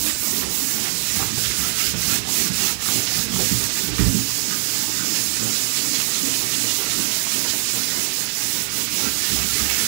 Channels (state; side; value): silent; left; 60 dB below the other